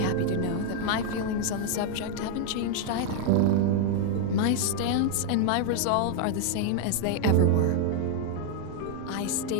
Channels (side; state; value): both; different; correlation 0.00